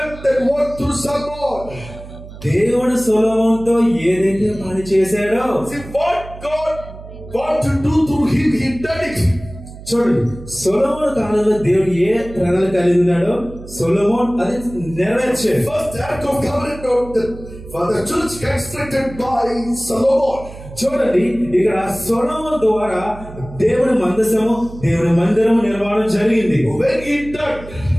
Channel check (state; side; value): noise; right; hum, 15 dB below the sound